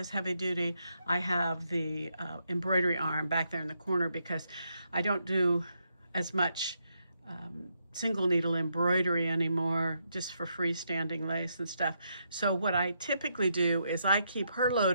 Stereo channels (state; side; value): inverted; both; correlation -0.79